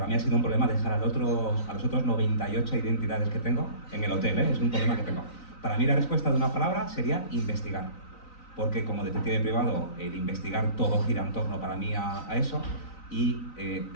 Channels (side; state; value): right; late; 3.9 ms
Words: mí ha sido un problema dejar a los otros 98 identidades que tengo en el hotel, ¿eh? Es un problema que tengo. Para mí la respuesta de una palabra sería investigar. Porque como detective privado, el investigar todo gira en torno para mí a eso. Y